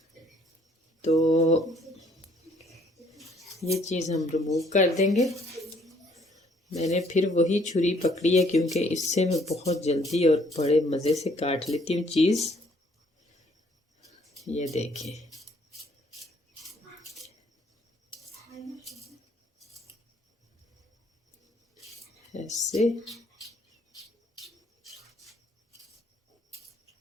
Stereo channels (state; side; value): normal; both; correlation 0.64